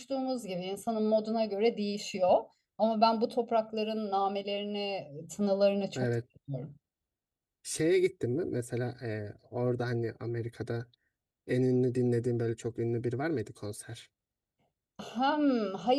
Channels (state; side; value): identical; both; correlation 1.00